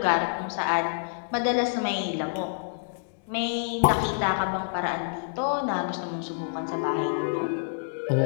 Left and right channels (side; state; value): right; silent; digital silence